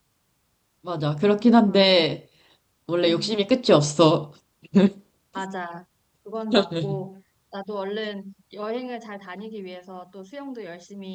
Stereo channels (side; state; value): both; identical; correlation 1.00